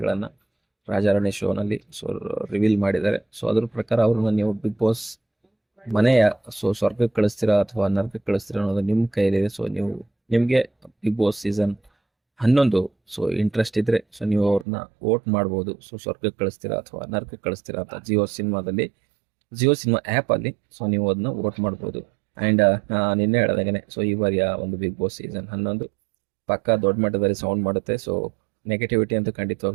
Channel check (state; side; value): drops out; left; at 14.7 s